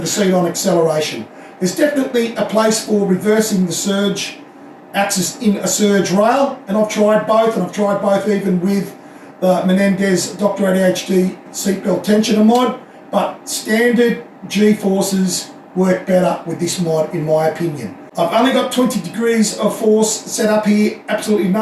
the seat on acceleration. There's definitely a place for reversing the surge axis in a surge rail, and I've tried both, and I've tried both even with the Menendez Dr ADHD seatbelt tensioner mod, but standard G-forces work better with this mod in my opinion. I've only got 20 degrees of force set up here, absolutely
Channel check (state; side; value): identical; both; correlation 1.00